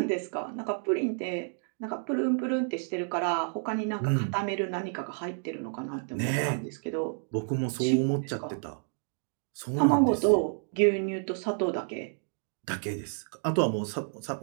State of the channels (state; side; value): silent; left; 58 dB below the other